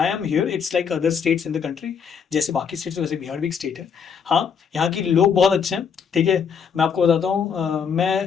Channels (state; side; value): quieter; right; 6.8 dB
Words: am here, it's like other states in the country. जैसे बाकी स्टेट्स वैसे बिहार भी एक स्टेट है। हाँ, यहाँ के लोग बहुत अच्छे हैं, ठीक है। मैं आपको बताता हूँ, मैं